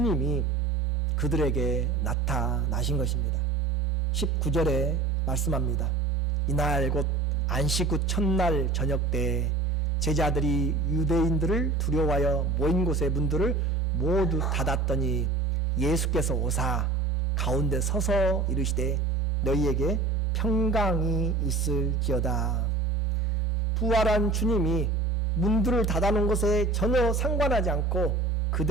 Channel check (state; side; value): quieter; left; 3.6 dB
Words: 그들에게 나타나신 것입니다. 19절에 말씀합니다. 이날 곧 안식 후 첫날 저녁 때 제자들이 유대인들을 두려워하여 모인 곳의 문들을 모두 닫았더니 예수께서 오사 가운데 서서 이르시되 너희에게 평강이 있을지어다. 부활한 주님이 문들을 닫아놓은 것에 전혀 상관하지 않고